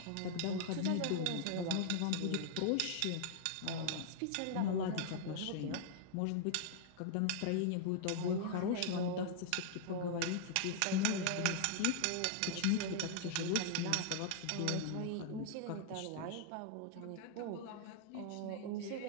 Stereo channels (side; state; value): both; different; correlation -0.01